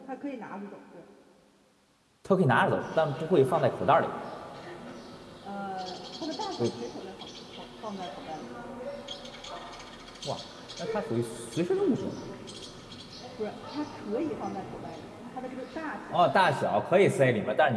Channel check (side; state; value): both; identical; correlation 1.00